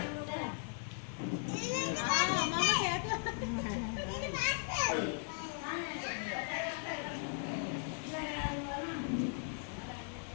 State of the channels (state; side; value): silent; right; 53 dB below the other